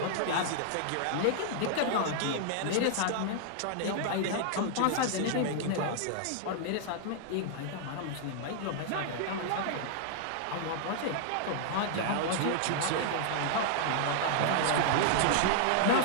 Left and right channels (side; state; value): both; different; correlation -0.01